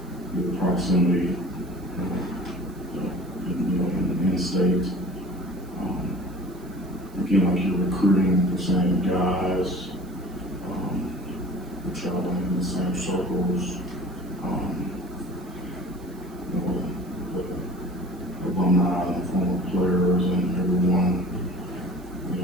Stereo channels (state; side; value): noise; right; hiss, 26 dB below the sound